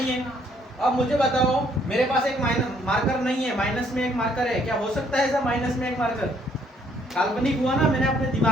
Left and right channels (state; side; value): normal; both; correlation 0.66